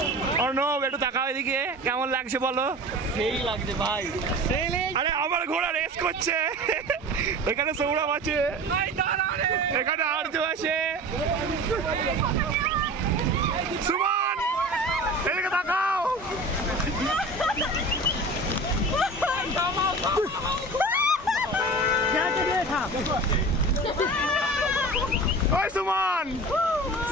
অর্ণব একটু তাকাও এদিকে, কেমন লাগছে বলো? সেই লাগছে ভাই, আরে আমার ঘোড়া রেস করছে। এখানে সৌরভ আছে, এখানে আর্য আছে, সুমন এদিকে তাকাও। ওই সুমন,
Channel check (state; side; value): normal; both; correlation 0.36